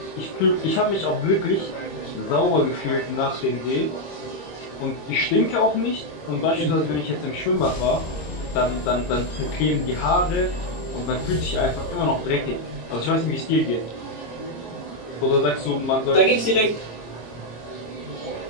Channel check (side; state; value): right; late; 26 ms